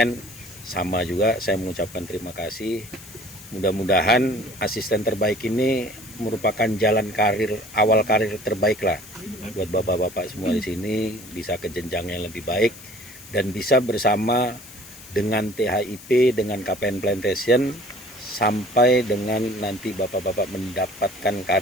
sama juga saya mengucapkan terima kasih. Mudah-mudahan asisten terbaik ini merupakan jalan karir, awal karir terbaik lah buat bapak-bapak semua di sini, bisa ke jenjang yang lebih baik dan bisa bersama dengan THIP, dengan KPN Plantation sampai dengan nanti bapak-bapak mendapatkan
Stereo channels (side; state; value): left; noise; hiss, 18 dB below the sound